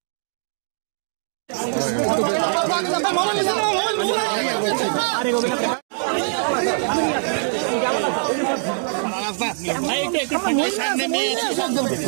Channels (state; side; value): silent; left; digital silence